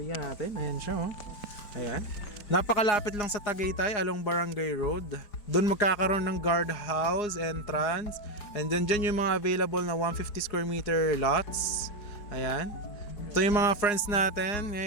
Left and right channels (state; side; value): late; right; 4.8 ms